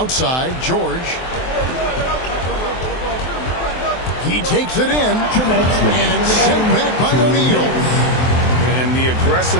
George. He takes it in, and it's sent back by O'Neal. And the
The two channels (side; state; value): right; late; 23 ms